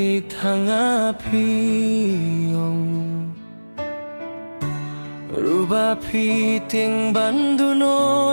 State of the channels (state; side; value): inverted; both; correlation -1.00